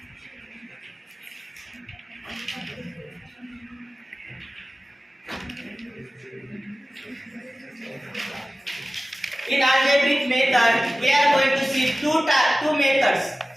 In algebraic method, we are going to see two methods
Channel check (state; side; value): normal; both; correlation 0.97